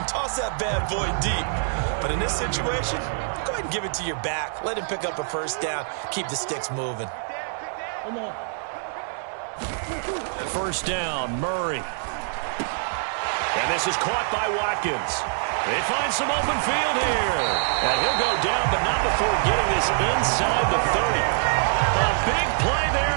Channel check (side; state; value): left; silent; digital silence